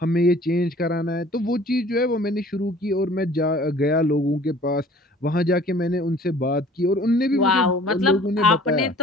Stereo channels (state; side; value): normal; both; correlation 0.50